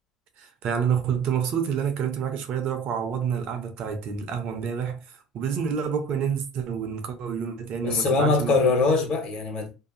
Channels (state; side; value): normal; both; correlation 0.41